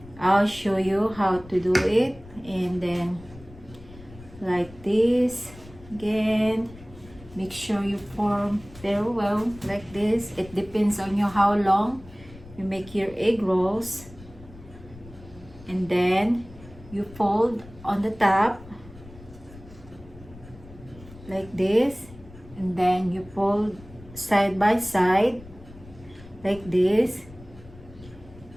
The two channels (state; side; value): noise; left; rumble, 19 dB below the sound